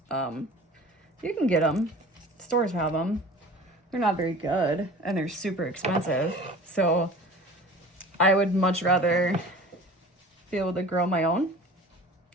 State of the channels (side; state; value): both; normal; correlation 0.42